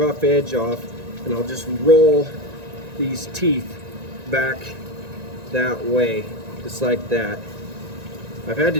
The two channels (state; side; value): late; left; 1.9 ms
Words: edge off, and I'll just roll these teeth back that way, just like that. I've had